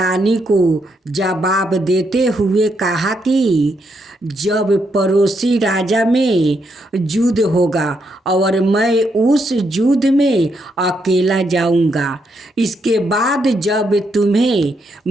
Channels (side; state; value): both; normal; correlation 0.78